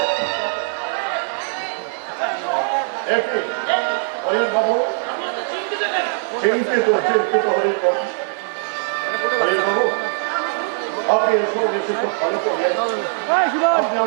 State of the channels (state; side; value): silent; left; 65 dB below the other